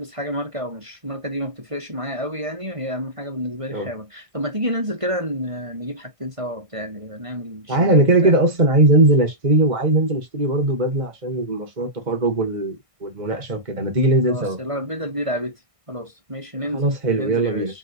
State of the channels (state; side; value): late; left; 1.6 ms